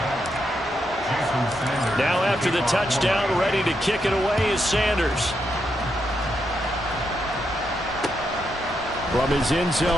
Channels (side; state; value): both; normal; correlation 0.82